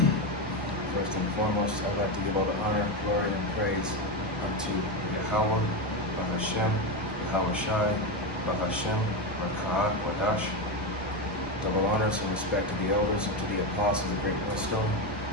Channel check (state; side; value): normal; both; correlation 0.13